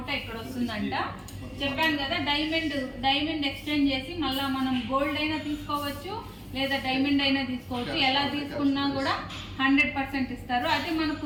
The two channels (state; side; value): identical; both; correlation 1.00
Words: ఇక్కడ వస్తుందంట. చెప్పాను కదా, డైమండ్ ఎక్స్చేంజ్ చేసి మళ్ళీ మనం గోల్డ్ అయినా తీసుకోవచ్చు లేదా డైమండ్ అయినా తీసుకోవచ్చు. ఎలా తీసుకున్నా కూడా 100% ఇస్తారు. అయితే